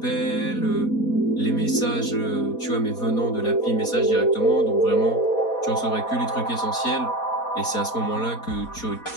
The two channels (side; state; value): right; late; 4.2 ms